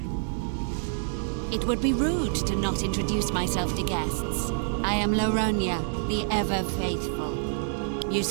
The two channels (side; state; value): left; silent; 60 dB below the other